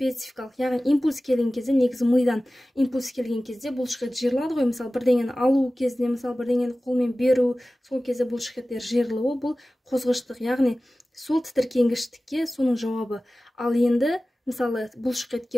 яғни импульс келген кезде, негізі мидан импульс келген кезде бұлшықет жиырылады ғой, мысалы, бірдеңені алу кезінде, мысалы, бірдеңені қолмен беру, сол кезде бұлшықеттер жиырылуы, бұл қозғыштық, яғни сол тітіркенгіштікке соның жауабы. Ал енді, мысалы, бұлшықетке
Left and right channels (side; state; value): both; normal; correlation 0.96